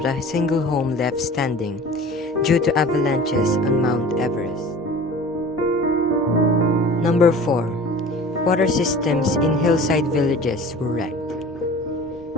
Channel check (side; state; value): both; normal; correlation 0.41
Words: a single home left standing due to avalanches on Mount Everest. Number 4, water systems in hillside villages were wrecked.